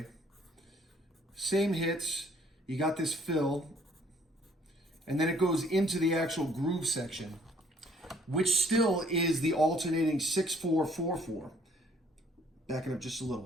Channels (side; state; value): both; normal; correlation 0.61